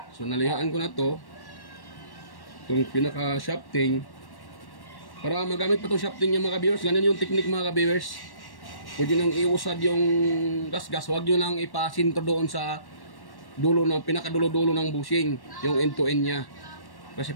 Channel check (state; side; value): late; right; 1.1 ms